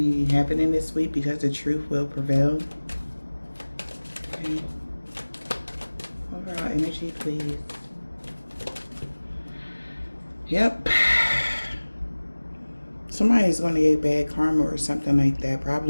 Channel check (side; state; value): both; inverted; correlation -1.00